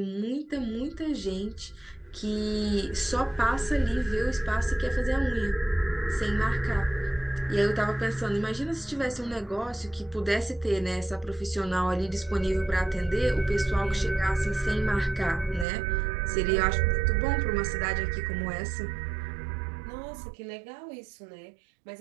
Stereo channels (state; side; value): drops out; left; at 15.7 s